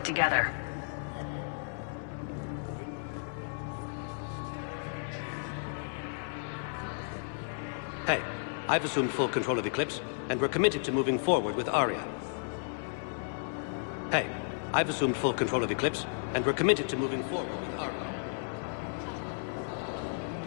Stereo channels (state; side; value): silent; right; digital silence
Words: together. Hey, I've assumed full control of Eclipse, and we're committed to moving forward with Aria. Hey, I've assumed full control of Eclipse, and we're committed to moving forward with Aria.